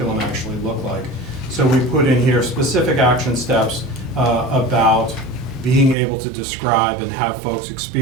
actually look like? So we put in here specific action steps about being able to describe and have folks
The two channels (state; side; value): drops out; left; at 6.0 s